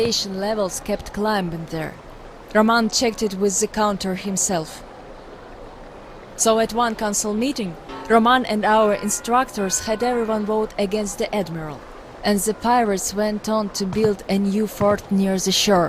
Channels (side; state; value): both; identical; correlation 1.00